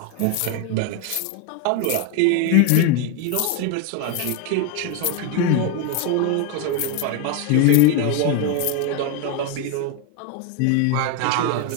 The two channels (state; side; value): different; both; correlation 0.01